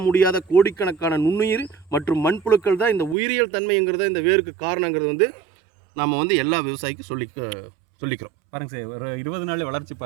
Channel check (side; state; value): left; drops out; at 3.2 s